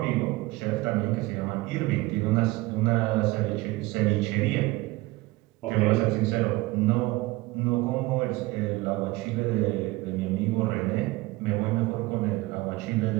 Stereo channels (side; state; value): left; quieter; 20.5 dB